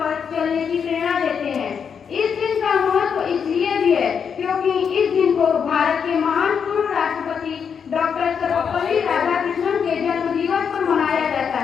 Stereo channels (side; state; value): right; quieter; 6.9 dB